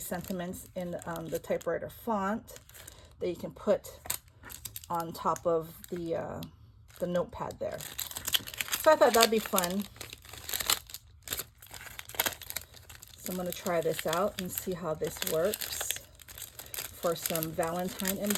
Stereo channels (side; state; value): both; identical; correlation 1.00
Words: sentiments in the typewriter font that you can put on top of the notepad there. So I thought that'd be fun. So I'm going to try this out and see how this works for some Valentine